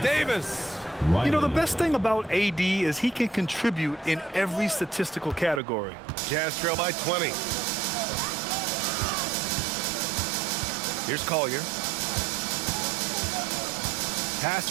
You know, the best thing about AD is he can contribute in every statistical category. Jazz trail by 20. Here's Collier. Pass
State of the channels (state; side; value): drops out; left; at 5.6 s